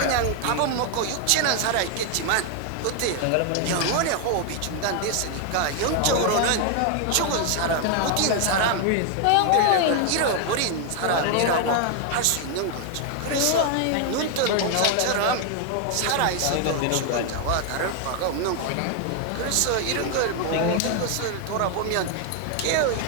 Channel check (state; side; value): different; both; correlation 0.00